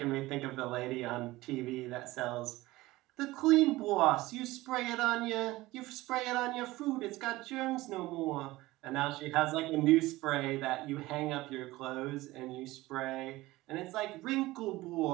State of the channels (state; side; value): quieter; left; 18.8 dB